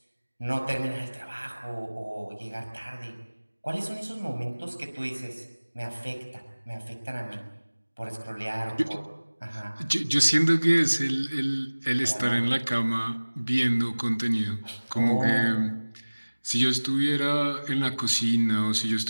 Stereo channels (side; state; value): both; inverted; correlation -1.00